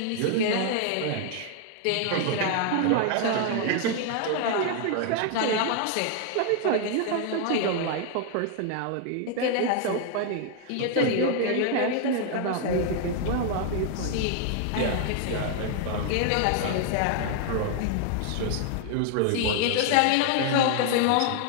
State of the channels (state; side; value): different; both; correlation 0.00